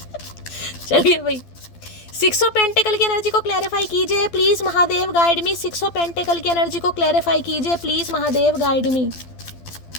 चलिए भाई, 6 ऑफ पेंटिकल की एनर्जी को क्लैरिफाई कीजिए please Mahadev guide me. 6 of pentacle की एनर्जी को क्लैरिफाई कीजिए प्लीज महादेव गाइड मी।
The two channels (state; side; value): late; right; 12 ms